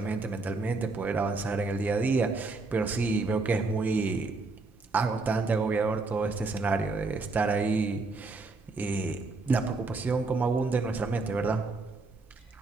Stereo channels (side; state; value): left; quieter; 3.7 dB